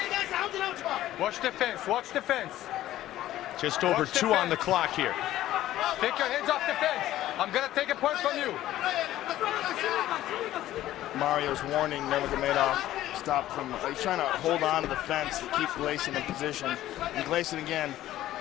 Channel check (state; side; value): quieter; right; 14.1 dB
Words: Watch the fence. Watch the fence. Just over 2 on the clock here. Take your hands off the fence. I'm going to take a point from you. Mario's warning Nurmagomedov stop from, he's trying to hold on to the fence to keep Glayson in position. And Glayson again,